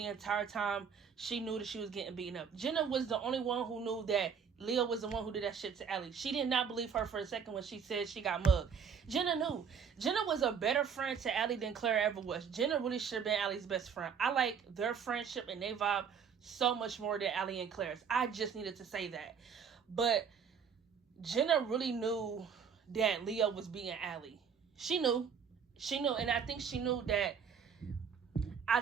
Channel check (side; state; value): left; quieter; 6.8 dB